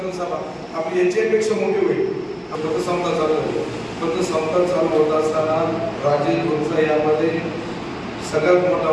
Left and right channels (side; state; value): both; identical; correlation 1.00